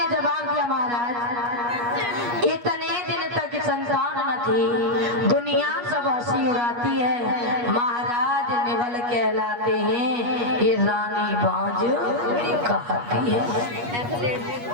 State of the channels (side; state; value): left; late; 8.4 ms